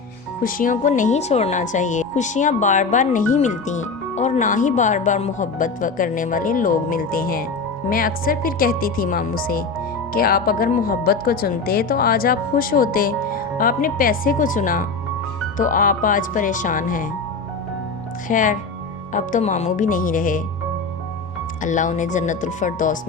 خوشیوں کو نہیں چھوڑنا چاہیے۔ خوشیاں بار بار نہیں ملتی اور نہ ہی بار بار محبت کرنے والے لوگ ملتے ہیں۔ میں اکثر پھر کہتی تھی ماموں سے کہ آپ اگر محبت کو چنتے تو آج آپ خوش ہوتے، آپ نے پیسے کو چنا تو آپ آج پریشان ہیں۔ خیر، اب تو ماموں بھی نہیں رہے، اللہ انہیں جنت الفردوس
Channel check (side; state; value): right; quieter; 4.2 dB